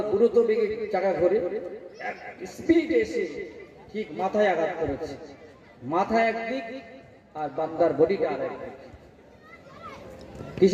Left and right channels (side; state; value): both; identical; correlation 1.00